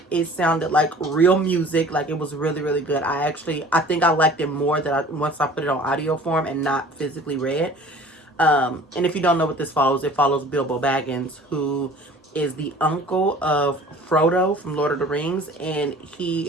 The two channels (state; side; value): normal; both; correlation 0.46